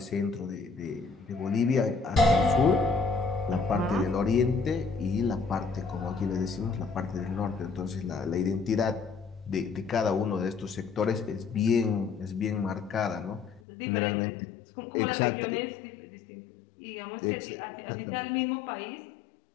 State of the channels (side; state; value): right; drops out; at 13.6 s